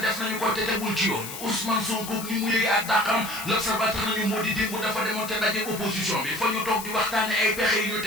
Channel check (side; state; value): left; noise; hiss, 10 dB below the sound